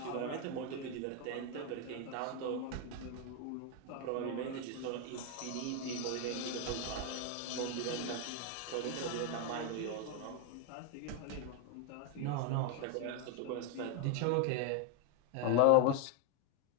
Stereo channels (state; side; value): different; both; correlation 0.01